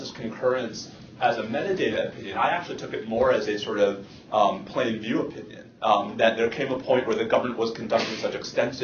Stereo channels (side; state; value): both; identical; correlation 1.00